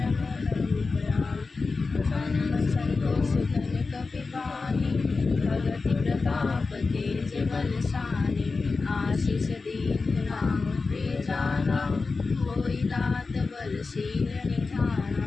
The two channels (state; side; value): quieter; right; 4.1 dB